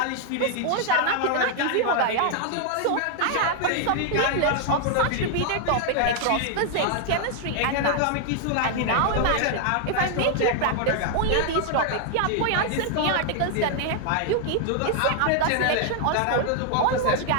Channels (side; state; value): both; different; correlation 0.00